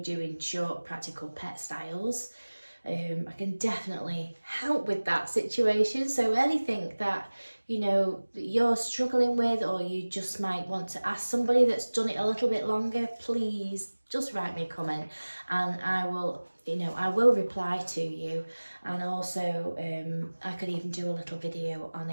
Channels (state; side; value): inverted; both; correlation -1.00